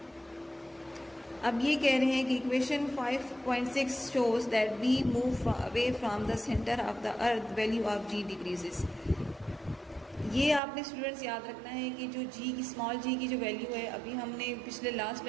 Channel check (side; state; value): left; drops out; at 10.6 s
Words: अब ये कह रहे हैं कि equation 5.6 shows that we move away from the centre of the earth, value of g decreases. ये आपने स्टूडेंट्स याद रखना है कि जो g की स्मॉल g की जो वैल्यू है, अभी हमने पिछले लास्ट